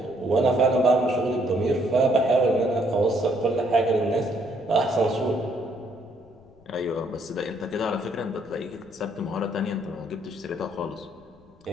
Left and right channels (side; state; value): left; noise; rumble, 28 dB below the sound